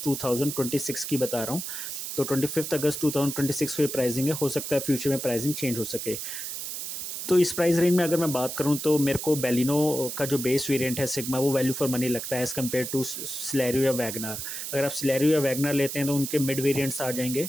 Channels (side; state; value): right; noise; hiss, 6 dB below the sound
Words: 2026 की बता रहा हूँ। तो 25 अगस्त 2026 को ये प्राइसिंग है, हो सकता है फ्यूचर में प्राइसिंग चेंज हो सके। तो इस प्राइस रेंज में अगर मैं बात करूं तो मेरे को बेलिनो का जो बेस वेरिएंट है सिग्मा वो वैल्यू फॉर मनी लगता है एज़ कम्पेयर टू सिलेरियो या वैगनार। अगर आप सिलेरियो या वैगनार लेते हैं तो उनके मिड वेरिएंट्स आ जाएंगे